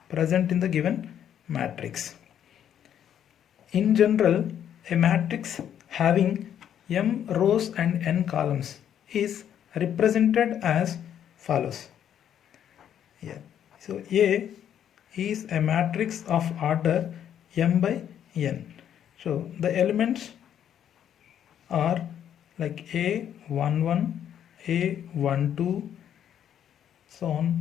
present in the given matrix. In general, a matrix having m rows and n columns is represented as follows. Yeah. So A is a matrix of order m by n. So the elements are like A11, A12, so on,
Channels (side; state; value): right; quieter; 9.7 dB